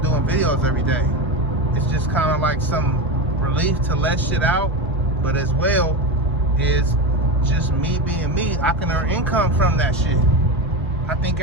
videos every day. It's just kind of like some relief to let shit out, but as well is just me being me. I can earn income from that shit. I think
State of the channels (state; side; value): normal; both; correlation 0.18